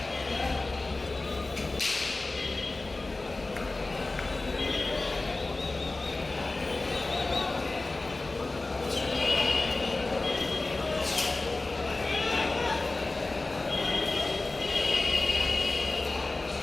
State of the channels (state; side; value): quieter; right; 3.2 dB